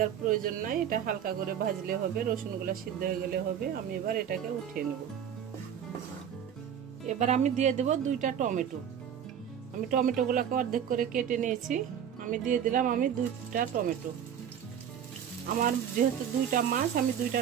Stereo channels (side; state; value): left; quieter; 8.9 dB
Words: প্রয়োজন নাই, এটা হালকা করে ভাজলে হবে, রসুনগুলো সিদ্ধ হয়ে গেলে হবে। আমি এবার এটাকে উঠিয়ে নেব। এবার আমি দিয়ে দেব 2টা টমেটো। আমি টমেটোগুলোকে অর্ধেক করে কেটে নিয়েছি। আমি দিয়ে দিলাম 2টা টমেটো। আমার যেহেতু 2টা মাছ, আমি 2টা